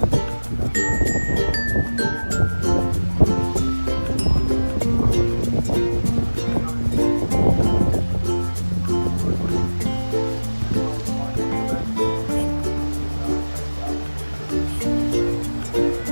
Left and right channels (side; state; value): both; inverted; correlation -1.00